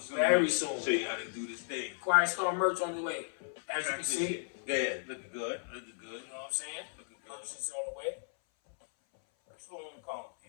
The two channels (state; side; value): silent; right; 55 dB below the other